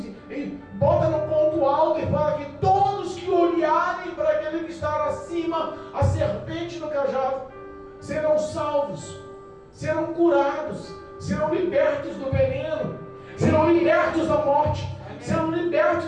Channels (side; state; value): both; identical; correlation 1.00